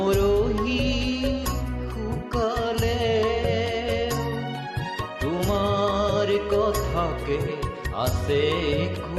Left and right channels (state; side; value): identical; both; correlation 1.00